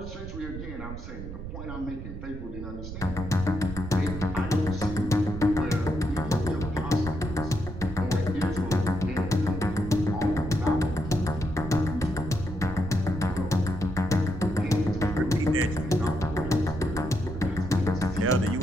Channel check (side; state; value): right; noise; rumble, 9 dB below the sound